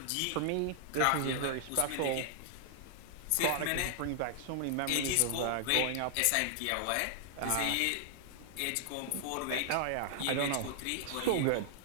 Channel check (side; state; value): both; different; correlation 0.00